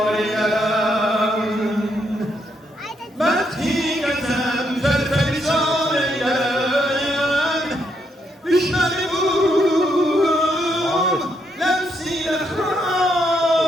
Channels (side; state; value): both; normal; correlation 0.77